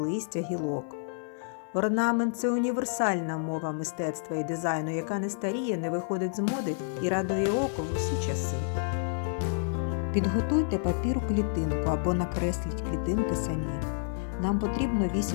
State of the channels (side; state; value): right; silent; 58 dB below the other